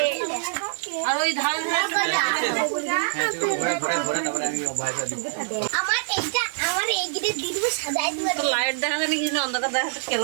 আর ওই ধার আমার এইটা দিদি সাজাই দিবা লাইট দেখা জানি কি অন্ধকার দেখা তো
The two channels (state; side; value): silent; left; digital silence